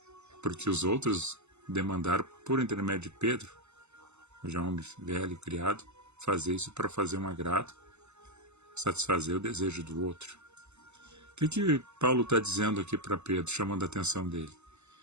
porque os outros demandaram, por intermédio de Pedro, já um homem velho, criado, fazer isso para fazer um agrado, satisfazer o desejo do outro. O que Paulo está dizendo aqui para Pedro, chamando a atenção dele?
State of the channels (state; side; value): late; left; 0.82 ms